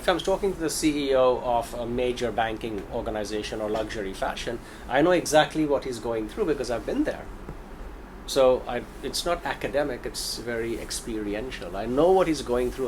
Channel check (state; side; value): identical; both; correlation 1.00